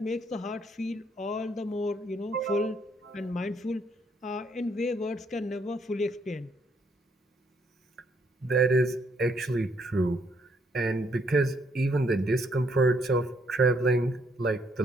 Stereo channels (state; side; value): normal; both; correlation 0.71